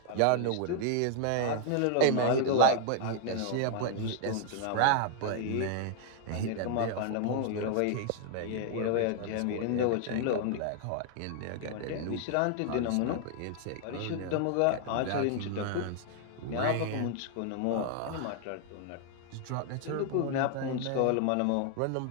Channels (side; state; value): both; different; correlation 0.00